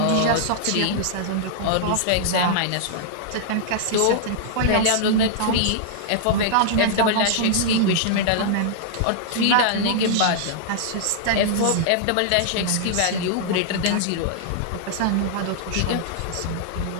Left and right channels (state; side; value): different; both; correlation -0.01